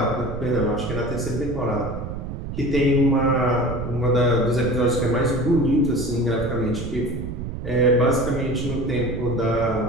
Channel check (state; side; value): noise; right; rumble, 7 dB below the sound